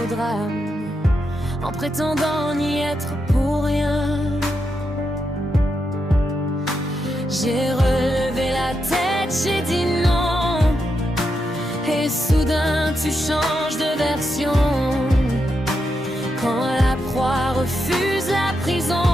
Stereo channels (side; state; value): both; normal; correlation 0.84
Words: au drame, en prétendant n'y être pour rien. J'ai relevé la tête, j'ai dit non, et soudain tu changes de version. Quand la proie refuse la